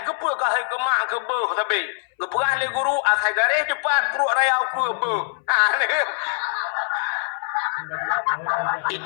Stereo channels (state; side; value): silent; right; 63 dB below the other